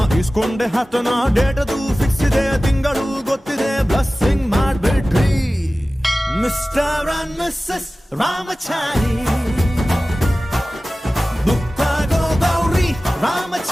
ಇಸ್ಕೊಂಡೆ ಹತ್ತನ ಡೇಟದು ಫಿಕ್ಸ್ ಇದೆ ತಿಂಗಳು ಗೊತ್ತಿದೆ ಬ್ಲಸ್ಸಿಂಗ್ ಮಾಡ್ಬಿಟ್ರಿ ಮಿಸ್ಟರ್ ಅಂಡ್ ಮಿಸ್ಸಸ್ ರಾಮಚಾರಿ ಬುಕ್ಕಾಗೋ Gowri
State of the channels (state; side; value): normal; both; correlation 0.96